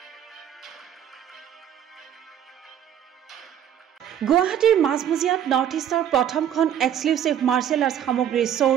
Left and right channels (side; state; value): left; quieter; 9.9 dB